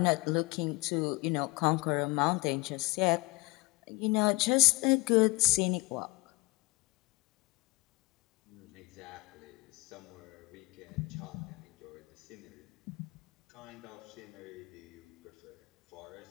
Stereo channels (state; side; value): quieter; right; 24.8 dB